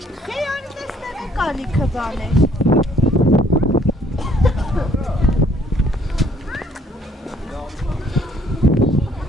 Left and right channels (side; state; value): both; normal; correlation 0.63